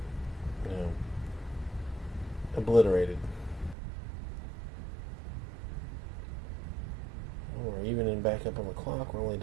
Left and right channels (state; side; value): drops out; left; at 3.8 s